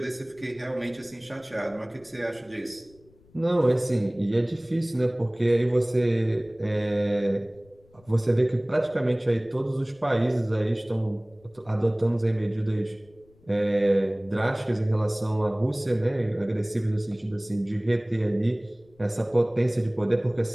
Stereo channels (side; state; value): left; noise; rumble, 29 dB below the sound